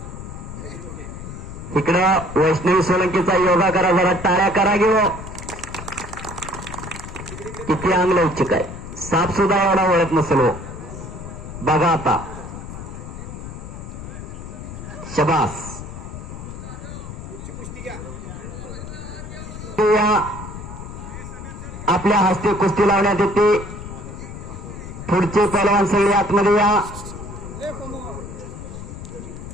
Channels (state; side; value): noise; left; rumble, 10 dB below the sound